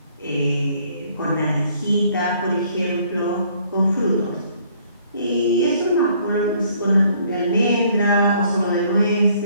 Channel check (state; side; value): inverted; both; correlation -0.62